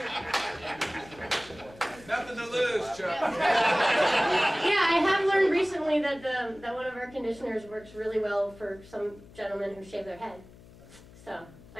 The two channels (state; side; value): noise; left; hum, 21 dB below the sound